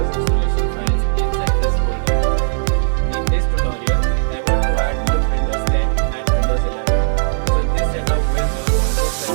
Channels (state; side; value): silent; left; digital silence